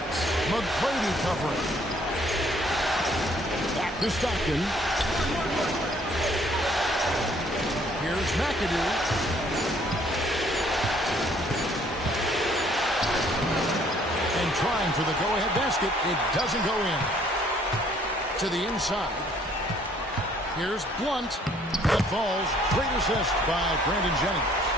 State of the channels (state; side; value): normal; both; correlation 0.61